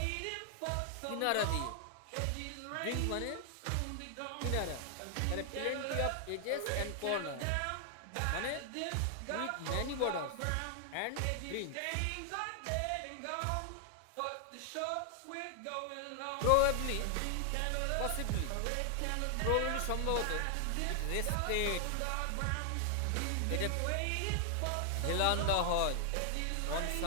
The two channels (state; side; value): different; both; correlation 0.00